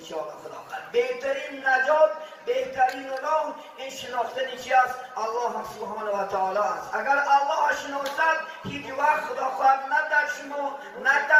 خداخواد. بهترین نجات، بهترین راه این شناختن چی است؟ الله سبحانه و تعالی است. اگر الله شناسد هیچ وقت خداخواد نه در شما، نه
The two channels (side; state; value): both; identical; correlation 1.00